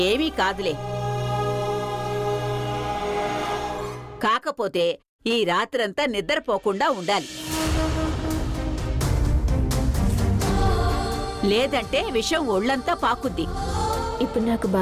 ఏమీ కాదులే. కాకపోతే ఈ రాత్రంతా నిద్రపోకుండా ఉండాలి. లేదంటే విషం ఒళ్ళంతా పాకుద్ది. ఇప్పుడు నాకు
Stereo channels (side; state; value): both; identical; correlation 1.00